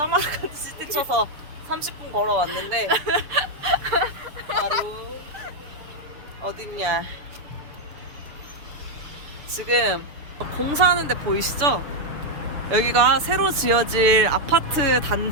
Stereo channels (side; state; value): left; late; 6.8 ms